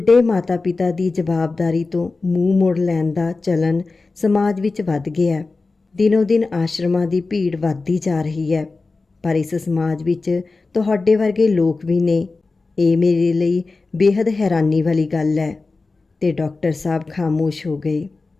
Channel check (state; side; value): quieter; right; 3.7 dB